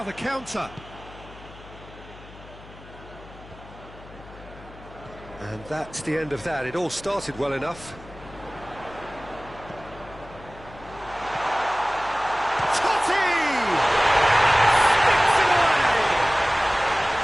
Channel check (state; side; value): noise; left; hum, 19 dB below the sound